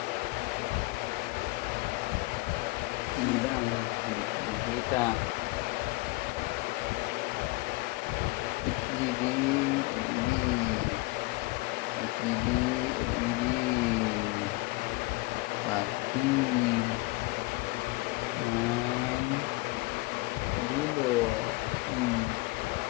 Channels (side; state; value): right; quieter; 22.9 dB